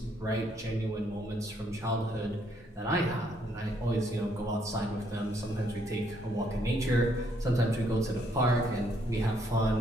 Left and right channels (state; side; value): normal; both; correlation 0.70